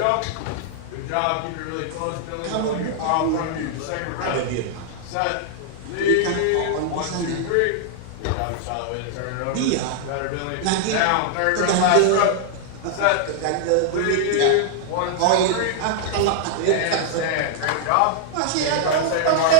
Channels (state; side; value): different; both; correlation -0.01